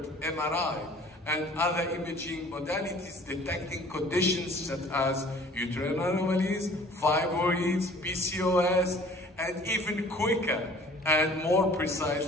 MRI and other imaging modalities detecting conditions such as uterine anomalies, fibroids, PCOS, and even quicker and more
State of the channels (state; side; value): normal; both; correlation 0.51